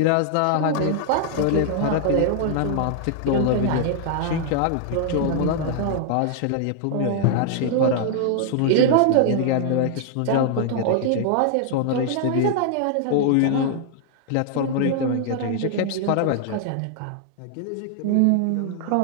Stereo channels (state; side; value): different; both; correlation 0.00